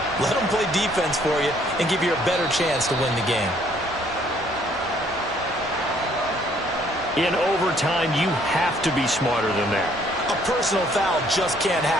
Let them play defense for you and give you a better chance to win the game. In overtime, you have to be smarter than that. A personal foul just can't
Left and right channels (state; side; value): normal; both; correlation 0.64